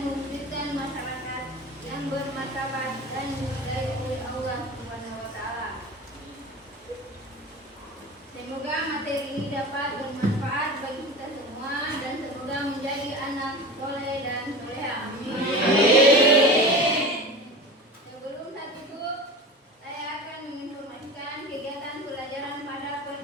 mewujudkan masyarakat yang bermartabat dan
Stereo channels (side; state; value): both; normal; correlation 0.32